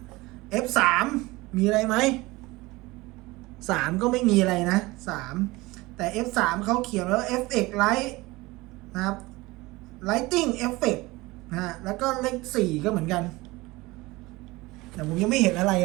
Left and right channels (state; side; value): quieter; left; 21.3 dB